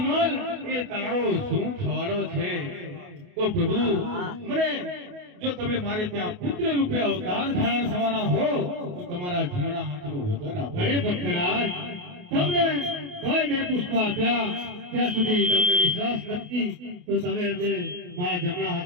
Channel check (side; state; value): left; late; 28 ms